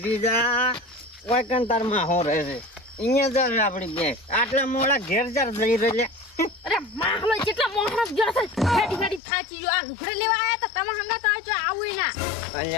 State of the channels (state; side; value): drops out; right; at 9.2 s